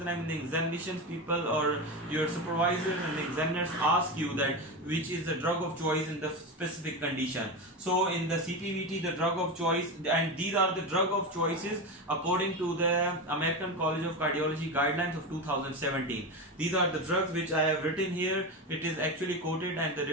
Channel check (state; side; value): normal; both; correlation 0.19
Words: time in the examinations people or your supervisor and the examiners ask you that which is the drug of choice in the specific condition. So in the CPVT the drug of choice, and these are the drug of choices according to the American College of Cardiology guidelines of 2017. These are the drugs which I have written here. It is actually quoted, and the